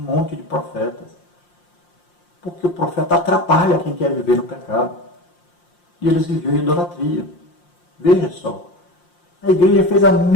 de profetas. Porque o profeta atrapalha quem quer viver no pecado. E eles viviam em idolatria. Veja só. A igreja fez a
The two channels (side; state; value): right; late; 5.7 ms